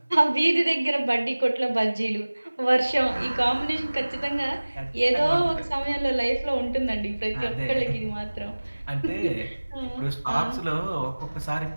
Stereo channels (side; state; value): both; inverted; correlation -1.00